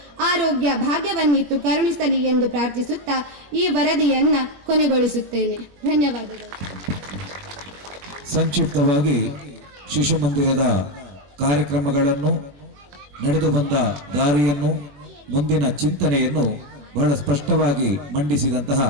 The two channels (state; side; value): late; left; 21 ms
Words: ಆರೋಗ್ಯ ಭಾಗ್ಯವನ್ನಿತ್ತು ಕರುಣಿಸಲಿ ಎಂದು ಪ್ರಾರ್ಥಿಸುತ್ತಾ ಈ ವರದಿಯನ್ನ ಕೊನೆಗೊಳಿಸುತ್ತೇನೆ. ಧನ್ಯವಾದಗಳು. ಸಂಕ್ಷಿಪ್ತವಾಗಿ ಶಿಶುಮಂದಿರದ ಕಾರ್ಯಕ್ರಮಗಳನ್ನು, ನಡೆದು ಬಂದ ದಾರಿಯನ್ನು, ಮುಂದಿನ ಚಿಂತನೆಯನ್ನು ಬಹಳ ಸ್ಪಷ್ಟವಾಗಿ ಮಂಡಿಸಿದಂತಹ